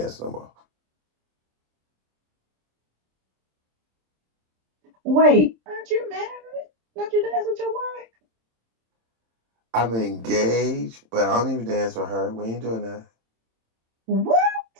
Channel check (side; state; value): left; late; 27 ms